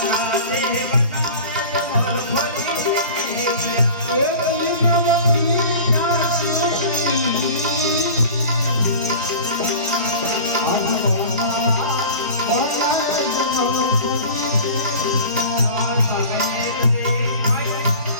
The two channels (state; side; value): inverted; both; correlation -0.39